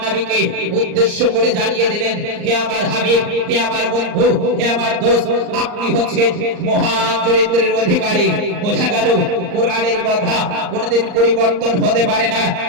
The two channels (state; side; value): late; left; 39 ms